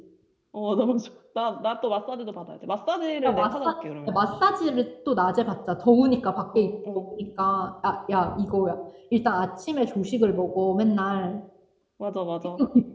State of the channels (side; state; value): both; identical; correlation 1.00